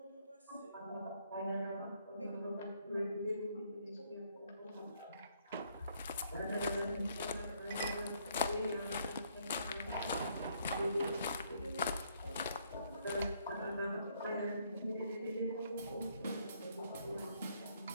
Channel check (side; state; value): both; inverted; correlation -0.68